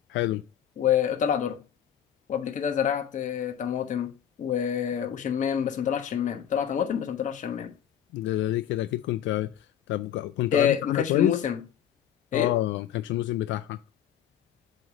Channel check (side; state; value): right; quieter; 9.8 dB